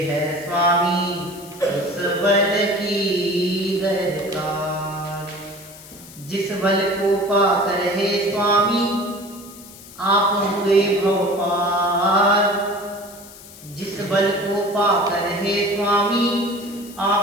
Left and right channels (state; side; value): noise; left; hiss, 18 dB below the sound